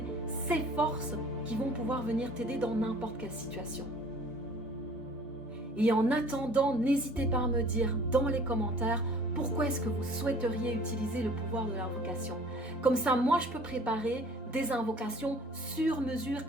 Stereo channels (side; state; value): both; normal; correlation 0.50